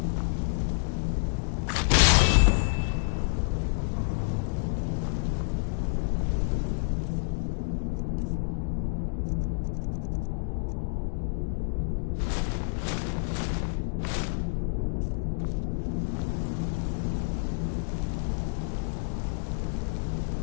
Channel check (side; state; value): right; silent; digital silence